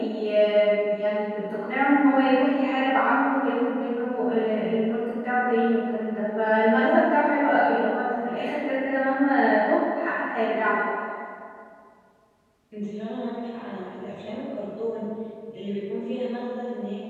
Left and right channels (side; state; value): both; identical; correlation 1.00